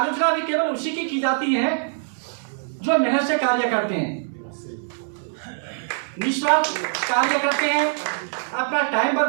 भी केवल उसी की जाती है जो मेहनत से कार्य करते हैं, निस्वार्थ कार्य करते हैं, अपना टाइम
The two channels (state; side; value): silent; left; digital silence